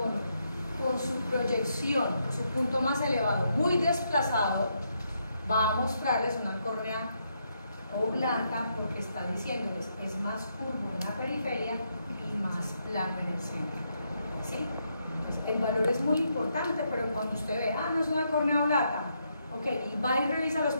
por su proyección, por su punto más elevado, muy desplazado, va a mostrarles una córnea oblata, porque está diciéndoles es más curvo en la periferia y más plano en el centro. ¿Sí? Entonces, el valor es muy importante, pero cuando usted ve, no es una córnea blata, ok, y va y revisa los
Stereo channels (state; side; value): inverted; both; correlation -0.78